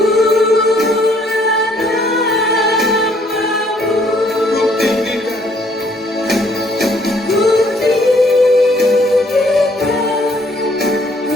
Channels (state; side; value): normal; both; correlation 0.64